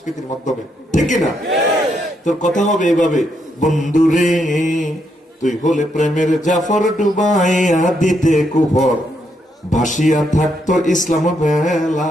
মাধ্যমে, ঠিক না? তোর কথা হবে এভাবে, বন্ধুরে তুই হলে প্রেমের জাফর ডুবাইয়া দিতে কুফর, ভাসিয়া থাকতো ইসলাম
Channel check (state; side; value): normal; both; correlation 0.77